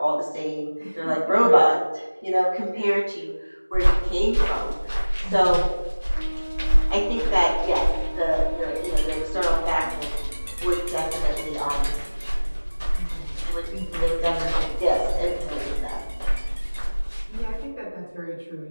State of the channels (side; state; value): both; inverted; correlation -1.00